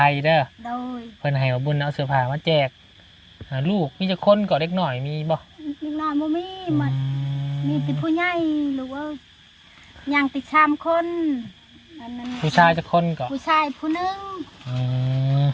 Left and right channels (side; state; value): both; identical; correlation 1.00